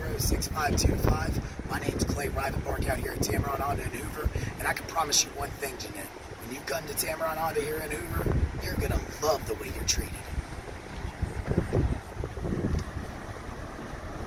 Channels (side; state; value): both; identical; correlation 1.00